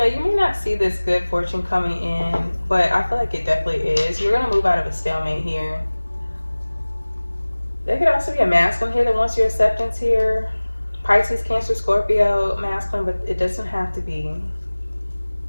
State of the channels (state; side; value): inverted; both; correlation -1.00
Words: you may not see this good fortune coming in, but I feel like it definitely is. You're going to move out of a stalemate here. There could also be a masculine here that wants your acceptance here. Pisces, Cancer, Scorpio, masculine, but it doesn't have to be.